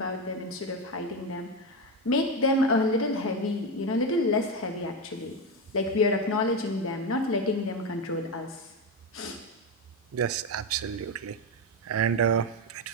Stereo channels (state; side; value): normal; both; correlation 0.13